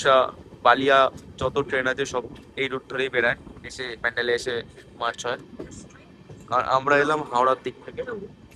বালিয়া যত ট্রেন আছে সব এই রুট ধরেই বেড়ায়, এসে প্যান্ডেলে এসে মার্চ হয়। আর আমরা এলাম হাওড়ার দিক থেকে,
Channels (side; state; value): both; identical; correlation 1.00